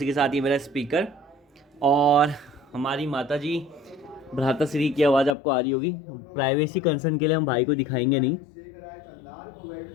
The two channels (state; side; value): drops out; right; at 5.4 s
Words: के साथ ये मेरा स्पीकर और हमारी माता जी भ्राताश्री की आवाज़ आपको आ रही होगी। प्राइवेसी कंसर्न के लिए हम भाई को दिखाएंगे नहीं,